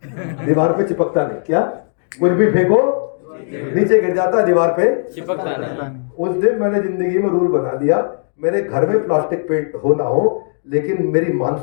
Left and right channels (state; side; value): silent; right; 63 dB below the other